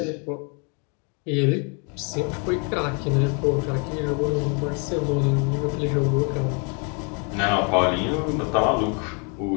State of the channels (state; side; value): quieter; right; 36.4 dB